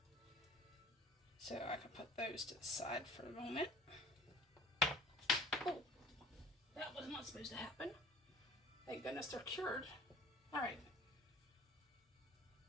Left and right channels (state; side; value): normal; both; correlation 0.47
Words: So I can put those to the side for a moment. Oh, that was not supposed to happen. Thank goodness they're cured. Alright.